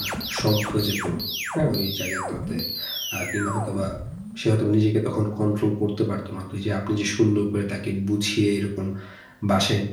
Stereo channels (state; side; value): identical; both; correlation 1.00